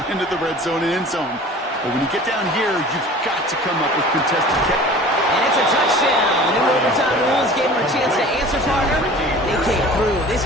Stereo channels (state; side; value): normal; both; correlation 0.43